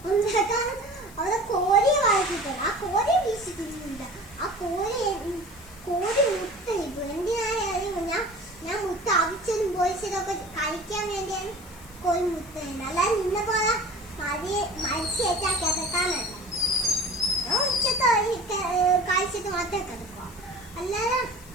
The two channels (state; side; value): noise; left; hiss, 22 dB below the sound